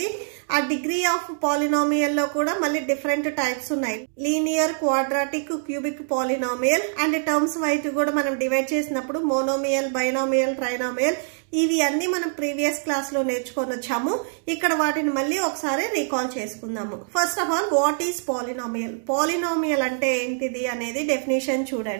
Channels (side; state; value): left; silent; digital silence